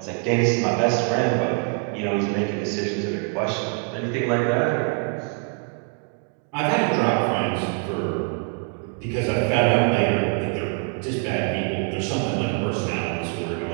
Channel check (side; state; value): left; quieter; 39.5 dB